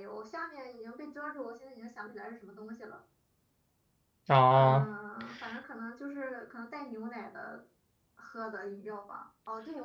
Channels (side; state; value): both; identical; correlation 1.00